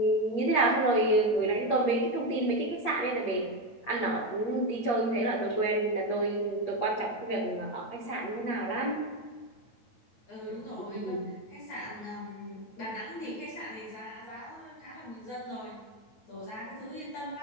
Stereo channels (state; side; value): late; right; 8.5 ms